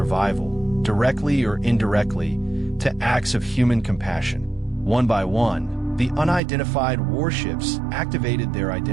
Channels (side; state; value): left; drops out; at 6.4 s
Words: directly or indirectly, to acts of human compassion. One by one, the unidentified warships activated their